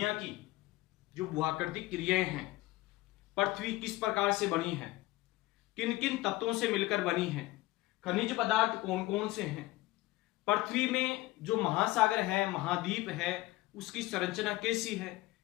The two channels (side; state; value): right; quieter; 18.9 dB